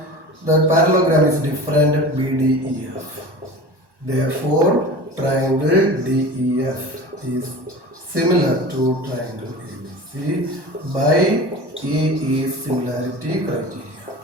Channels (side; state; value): left; late; 1.1 ms